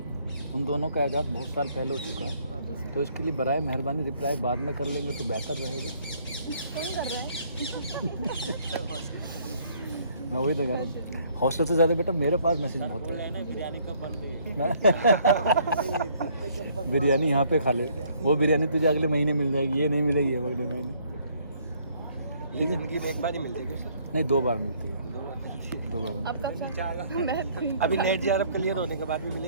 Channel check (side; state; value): both; inverted; correlation -0.63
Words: उन दोनों का ऐजाद बहुत साल पहले हो चुका है, तो इसके लिए बराए मेहरबानी रिप्लाई बाद में कर लेंगे तो बेहतर रहेगा। कौन कर रहा है? मैं वही तो कह रहा हूँ, हॉस्टल से ज़्यादा बेटा मेरे पास मैसेज बहुत बोल रहे है। हैं ना बिरयानी कब बन रही है। बिरयानी यहाँ पे खा ले, वो बिरयानी तुझे अगले महीने मिल जाएगी, ये नहीं मिलेगी अगले महीने। ये जिंदगी में एक बार ही मिलती है सर। नहीं, 2 बार मिलती है, 2 बार। अब कब सर? अभी नेट JRF क्लियर होने के बाद भी